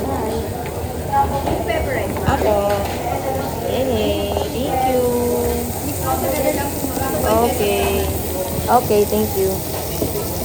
bye. Apo. Hey, thank you. Okay. Okay, thank you.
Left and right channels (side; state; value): both; identical; correlation 1.00